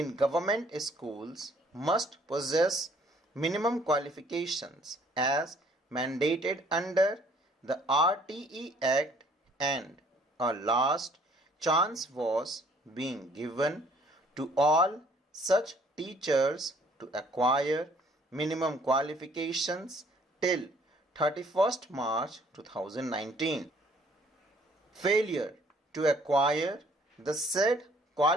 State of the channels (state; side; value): normal; both; correlation 0.60